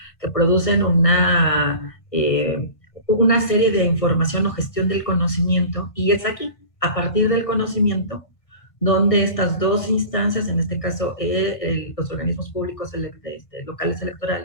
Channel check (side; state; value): right; late; 1.5 ms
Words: que producen una serie de información o gestión del conocimiento, y es aquí, a partir del conocimiento, donde estas dos instancias, en este caso los organismos públicos locales